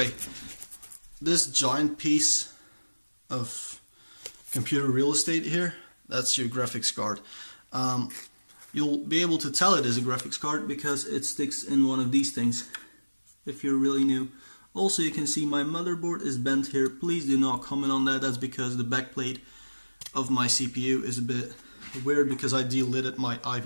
this giant piece of computer real estate here, that's your graphics card. You'll be able to tell it is a graphics card because it sticks in one of these things if you're really new. Also, you can see my motherboard is bent here. Please do not comment on that. That's because the backplate of my CPU is a bit weird because I delidded my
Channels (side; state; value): both; inverted; correlation -1.00